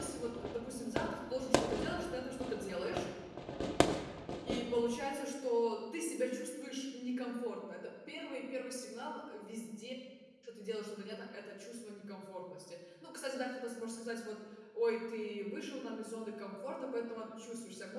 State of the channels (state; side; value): identical; both; correlation 1.00